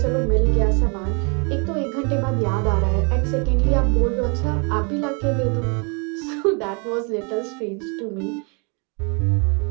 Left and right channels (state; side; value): quieter; left; 34.6 dB